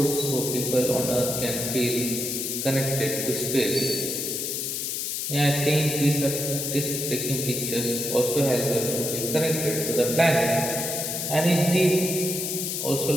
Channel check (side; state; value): left; noise; hiss, 2 dB below the sound